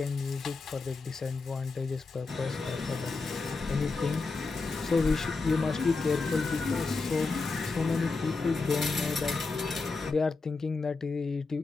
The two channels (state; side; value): quieter; right; 4.0 dB